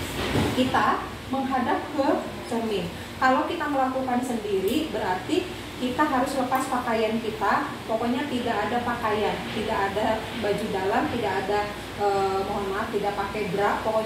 kita menghadap ke cermin. Kalau kita melakukan sendiri berarti kita harus lepas pakaian kita, pokoknya tidak ada pakaian, tidak ada baju dalam, tidak ada mohon maaf, tidak pakai bra,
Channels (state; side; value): identical; both; correlation 1.00